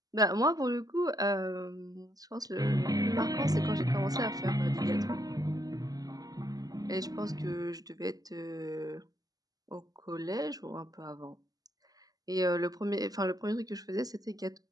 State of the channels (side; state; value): left; late; 0.18 ms